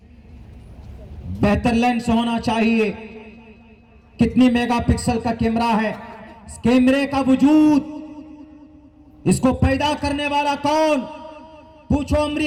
بہتر لینس ہونا چاہیے۔ کتنی میگا پکسل کا کیمرہ ہے، اس کیمرے کا وجود، اس کو پیدا کرنے والا کون؟ پوچھو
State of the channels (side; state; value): both; identical; correlation 1.00